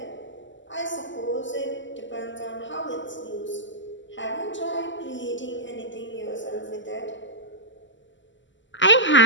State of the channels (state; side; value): late; right; 0.54 ms